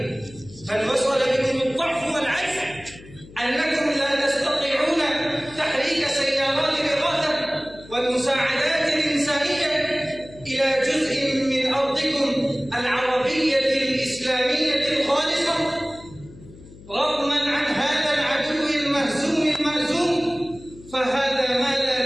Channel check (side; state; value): left; noise; hum, 20 dB below the sound